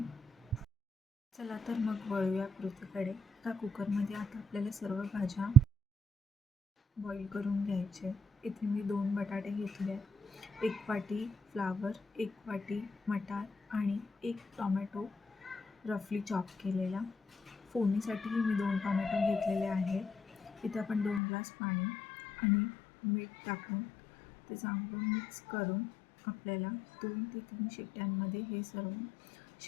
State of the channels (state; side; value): drops out; right; at 21.2 s